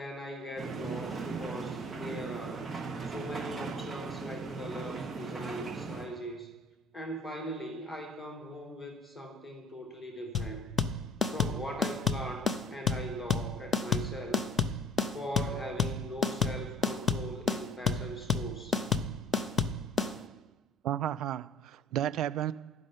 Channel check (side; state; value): both; normal; correlation 0.48